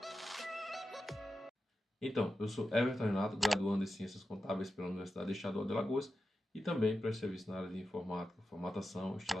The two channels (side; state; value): both; normal; correlation 0.91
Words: Então, eu sou Everton Renato, graduando em Ciências Contábeis pela Universidade Estadual de Alagoas e também presto serviço na área de informática, formatação e